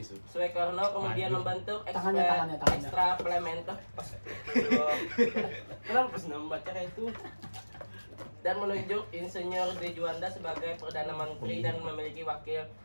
Soekarno kemudian membentuk Tangannya. ekstraplementer. Kenapa pas membaca kayak itu? Dan menunjuk Insinyur De Juanda sebagai Perdana Menteri dan memiliki wakil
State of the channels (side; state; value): both; inverted; correlation -1.00